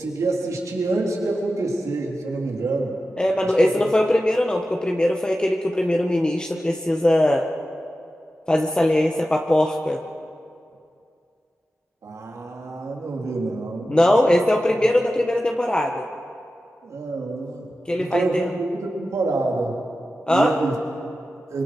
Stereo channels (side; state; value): both; normal; correlation 0.93